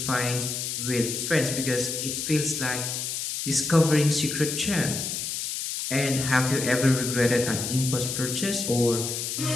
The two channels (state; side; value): noise; left; hiss, 3 dB below the sound